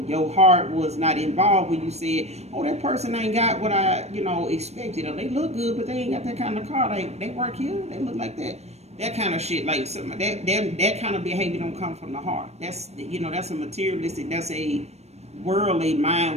your heart was not involved when you said, oh, that person ain't got what I, expected. Or they look good, but they ain't got that kind of car. They work here, they look like that. That kind of shit, like some that kind of behavior don't come from the heart. That's that's a materialistic, that's a worldly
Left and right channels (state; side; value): late; left; 0.31 ms